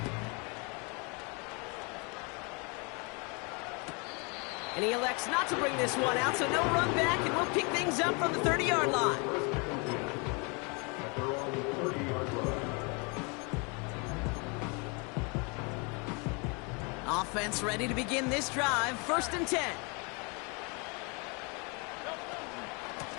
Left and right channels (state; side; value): quieter; right; 32.0 dB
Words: And he elects not to bring this one out, so no run back, and we'll pick things up from the 30-yard line. Offense ready to begin this drive. 1st and 10.